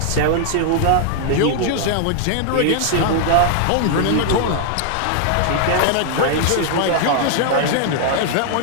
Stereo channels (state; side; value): different; both; correlation 0.00